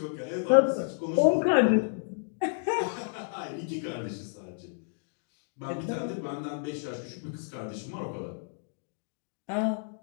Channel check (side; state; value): right; silent; digital silence